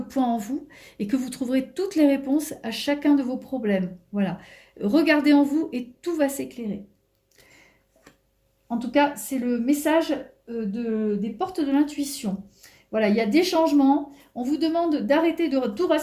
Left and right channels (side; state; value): both; identical; correlation 1.00